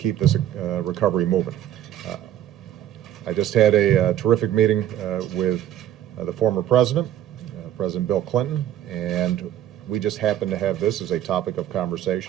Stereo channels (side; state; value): left; quieter; 11.6 dB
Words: this recovery moving. I just had a terrific meeting with the former president, President Bill Clinton, and we just happened to have this as a topic of